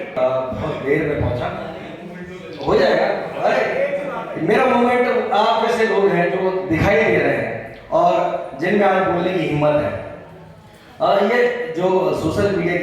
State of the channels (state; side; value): identical; both; correlation 1.00